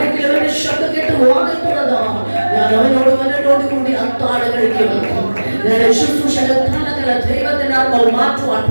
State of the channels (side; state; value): both; inverted; correlation -1.00